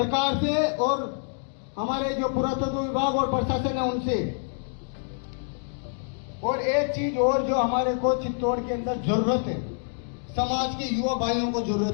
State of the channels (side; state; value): right; silent; digital silence